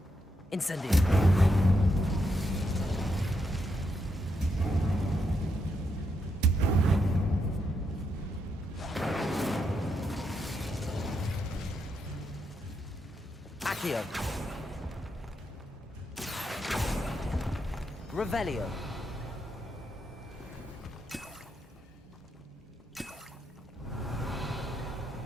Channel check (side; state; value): both; normal; correlation 0.81